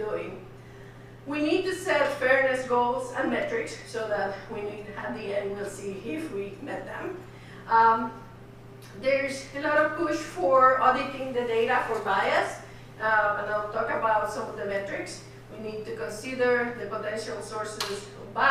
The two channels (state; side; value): identical; both; correlation 1.00